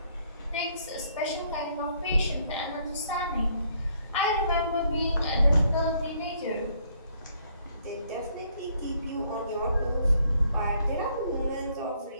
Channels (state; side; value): inverted; both; correlation -0.67